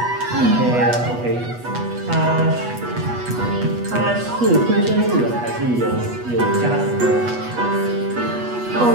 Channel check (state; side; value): late; left; 8.2 ms